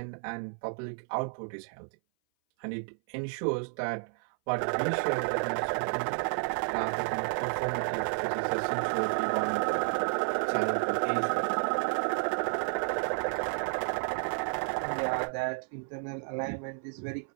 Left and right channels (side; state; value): left; silent; 57 dB below the other